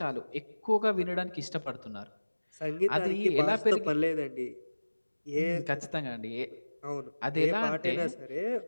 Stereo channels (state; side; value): inverted; both; correlation -1.00